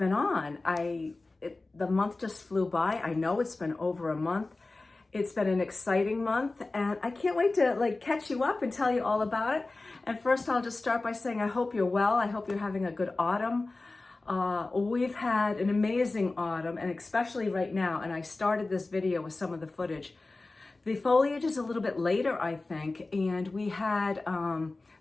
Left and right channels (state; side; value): quieter; right; 3.3 dB